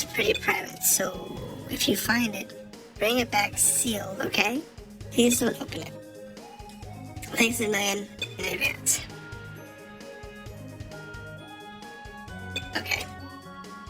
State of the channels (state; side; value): identical; both; correlation 1.00